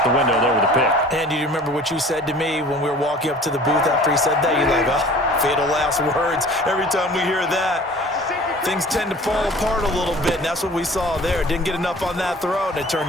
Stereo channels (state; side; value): normal; both; correlation 0.46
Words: the window there with a pick. And do you remember what you said to me when we were walking up to the booth after he said that? You're like, oh, fatal last words. Every time we hear that, things tend to fall apart a little bit, and that's what we saw there. Didn't get enough on that throw, and it